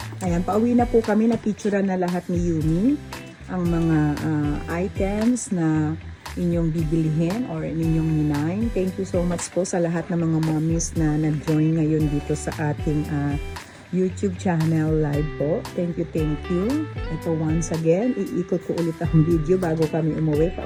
Ayan, pauwi na po kami. Na-picturean na lahat ni Yumi ang mga items na inyong bibilihin or inyong ninain. Thank you so much po sa lahat ng mga mommies na nag-join ngayon dito sa ating YouTube channel live po. Thank you, thank you. Ito once again, iikot ko ulit ang video bago kami umuwi.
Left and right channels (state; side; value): identical; both; correlation 1.00